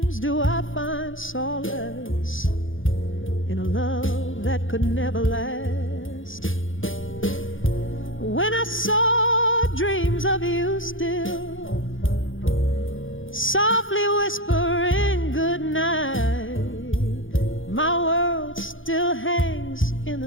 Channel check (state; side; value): late; right; 0.57 ms